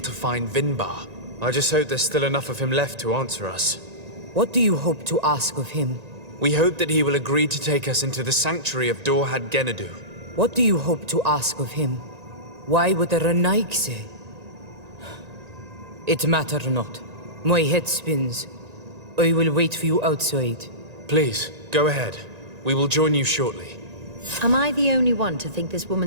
find Vinbar. I just hope there's still enough of him left to answer us. What do you hope to ask of him? We hope that he will agree to take us into the sanctuary of Dorhad Genadu. What do you hope to ask of him? Why would the Renaig say? It matter not. My head spins. I will wait for you outside. Please, go ahead. We will join you shortly. Am I the only one to think this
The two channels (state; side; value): late; left; 1.9 ms